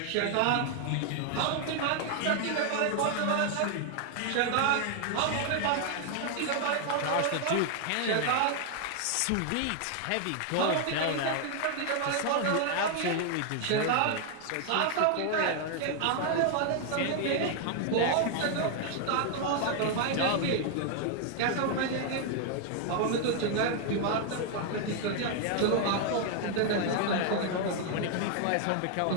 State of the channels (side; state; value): both; different; correlation 0.00